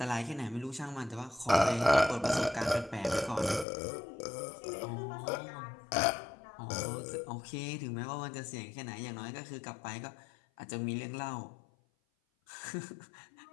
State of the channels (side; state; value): right; drops out; at 3.7 s